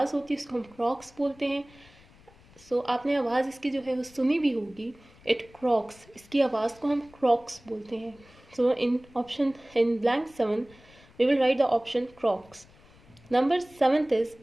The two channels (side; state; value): left; noise; rumble, 26 dB below the sound